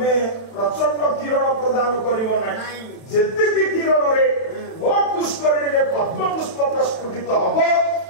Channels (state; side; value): late; right; 31 ms